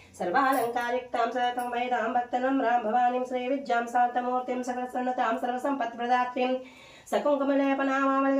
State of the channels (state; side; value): identical; both; correlation 1.00